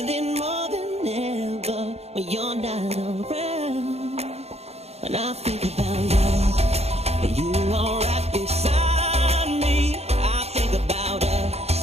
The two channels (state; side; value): late; left; 0.30 ms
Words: more than ever when you're not around. When I think about love, you are right beside me. I think about